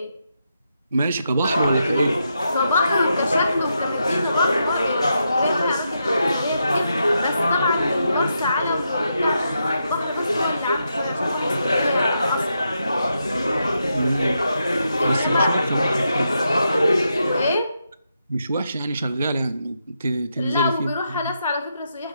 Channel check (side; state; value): both; inverted; correlation -0.83